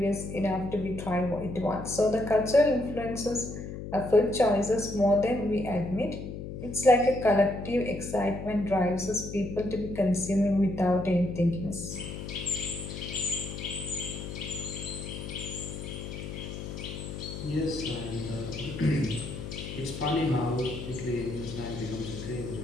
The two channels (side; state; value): left; noise; hum, 8 dB below the sound